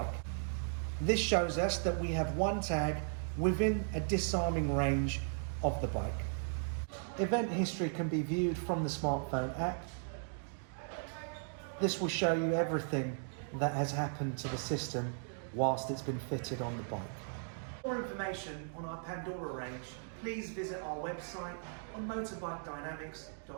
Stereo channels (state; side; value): silent; left; digital silence